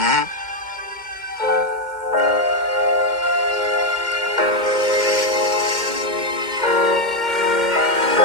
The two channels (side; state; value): left; late; 2.1 ms